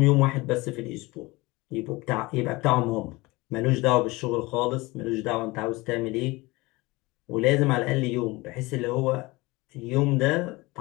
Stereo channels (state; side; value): quieter; right; 22.6 dB